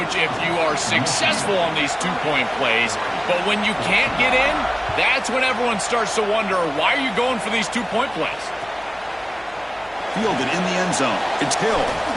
if you are successful on these two-point plays. But when you can't get in, that's when everyone starts to wonder, why are you going for these two-point plays? Fielded in the end zone. It's Hill.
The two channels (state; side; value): noise; left; hum, 27 dB below the sound